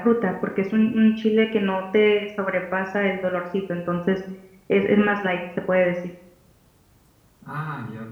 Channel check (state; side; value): identical; both; correlation 1.00